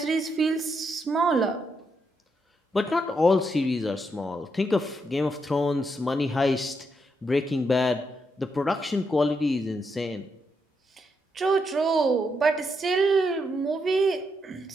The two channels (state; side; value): normal; both; correlation 0.80